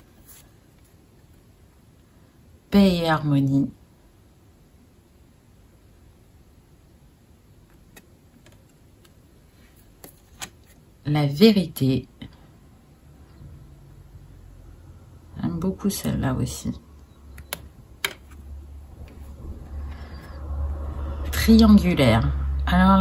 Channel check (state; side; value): identical; both; correlation 1.00